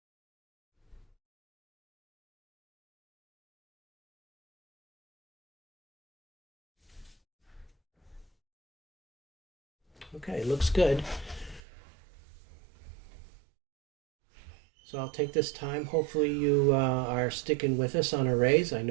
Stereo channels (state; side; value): drops out; left; at 11.6 s